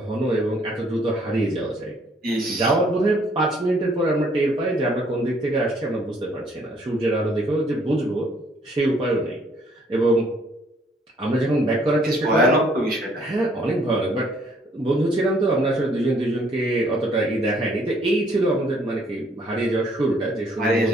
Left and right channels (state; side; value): normal; both; correlation 0.64